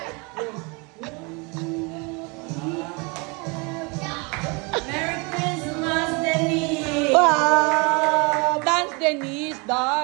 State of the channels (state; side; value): quieter; left; 29.9 dB